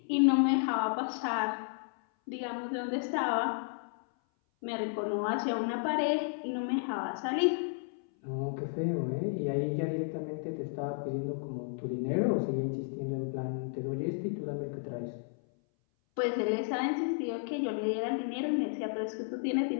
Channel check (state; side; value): silent; right; 56 dB below the other